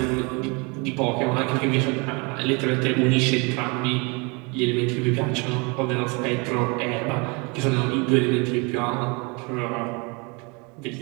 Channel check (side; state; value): left; quieter; 30.1 dB